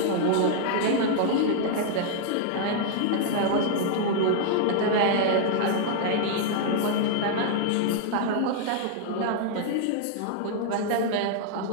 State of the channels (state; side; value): different; both; correlation -0.01